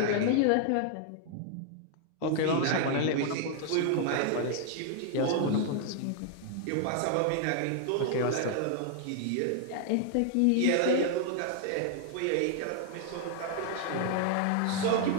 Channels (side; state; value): both; different; correlation 0.00